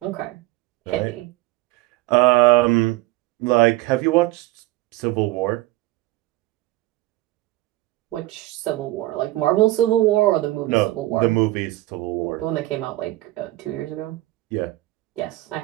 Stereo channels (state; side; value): quieter; left; 18.1 dB